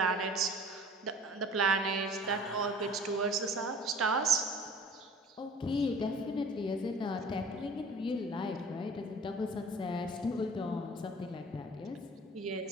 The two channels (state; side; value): normal; both; correlation 0.46